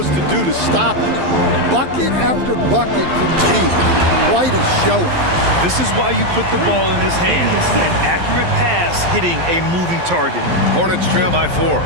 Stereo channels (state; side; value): late; left; 12 ms